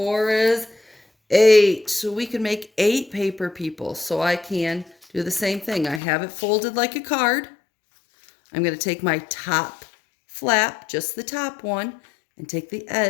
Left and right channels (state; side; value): drops out; right; at 6.0 s